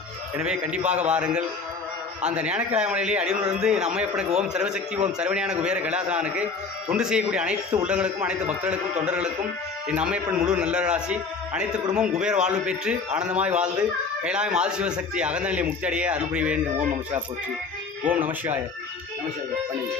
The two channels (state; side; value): quieter; right; 4.4 dB